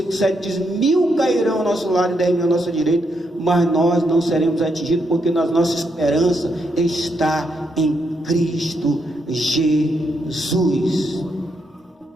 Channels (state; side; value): normal; both; correlation 0.79